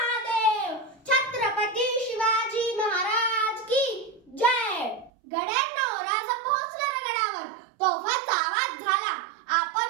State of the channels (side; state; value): left; drops out; at 5.1 s